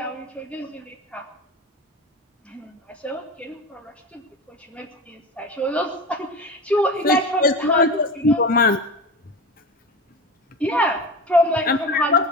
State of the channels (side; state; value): both; normal; correlation 0.28